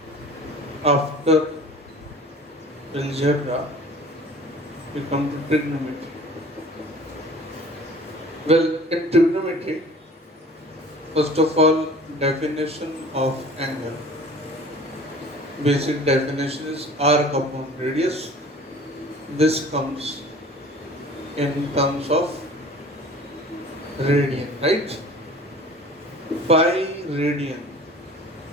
after algebra, we come to trigonometry. Well, in trigonometry, first of all, definition of angle. Basic definition is arc upon radius. This comes in terms of radian, right? Pi radian,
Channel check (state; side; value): normal; both; correlation 0.45